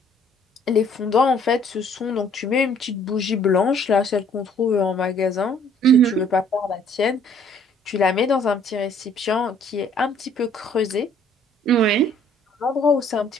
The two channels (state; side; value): normal; both; correlation 0.59